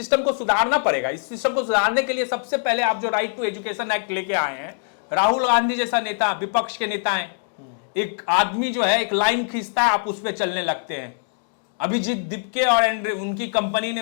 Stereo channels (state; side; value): silent; right; digital silence